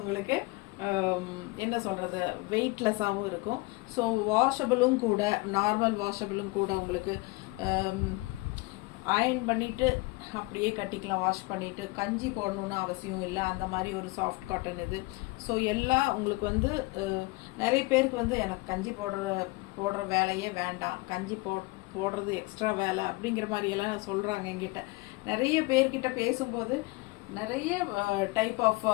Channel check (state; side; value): quieter; right; 23.8 dB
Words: என்ன சொல்கிறது, வெயிட்லெஸ்ஸாகவும் இருக்கும். ஸோ வாஷபிளும் கூட, நார்மல் வாஷபிளும் கூட. உங்களுக்கு அயர்ன் பண்ணிவிட்டு அப்படியே கட்டிக்கலாம், வாஷ் பண்ணிவிட்டு. கஞ்சி போடணுன்னு அவசியம் இல்லை, அந்த மாதிரி ஒரு சாஃப்ட் காட்டன் இது. ஸோ எல்லாம் உங்களுக்கு வந்து நிறைய பேருக்கு வந்து எனக்கு கஞ்சி போடுற வேலையே வேண்டாம், கஞ்சி போடுறது எக்ஸ்ட்ரா வேலை அப்படிங்கிற மாதிரியெல்லாம் சொல்கிறாங்க என்கிட்ட. நிறைய பேர்கிட்ட பேசும்போது நிறைய டைப் ஆஃப்